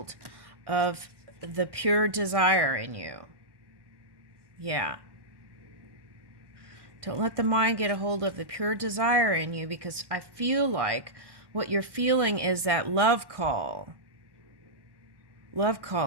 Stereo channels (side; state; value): left; late; 1.1 ms